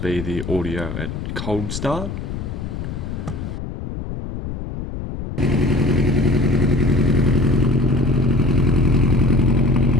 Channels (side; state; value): left; noise; rumble, 7 dB below the sound